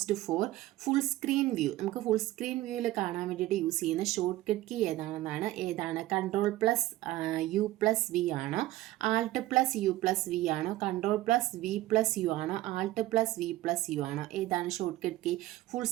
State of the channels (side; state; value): left; quieter; 16.4 dB